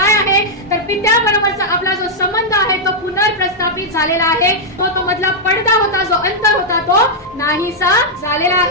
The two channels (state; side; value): normal; both; correlation -0.04